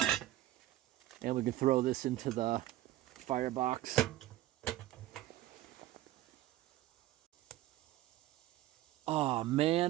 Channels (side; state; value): left; quieter; 15.2 dB